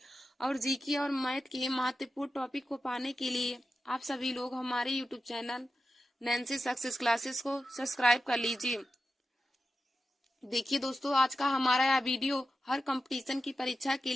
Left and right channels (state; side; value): normal; both; correlation 0.91